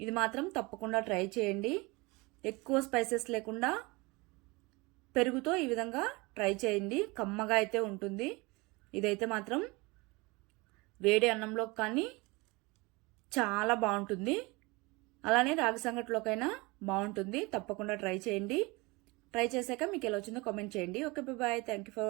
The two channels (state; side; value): quieter; left; 25.0 dB